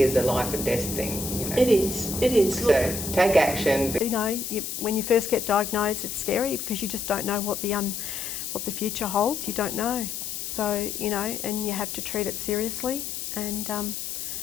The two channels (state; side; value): noise; left; hiss, 5 dB below the sound